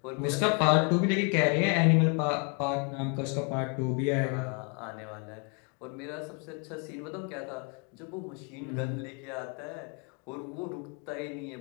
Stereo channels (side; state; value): right; quieter; 36.2 dB